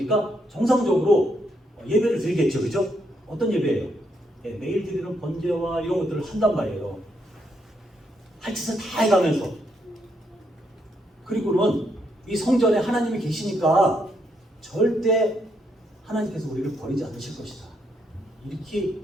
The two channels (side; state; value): both; normal; correlation 0.76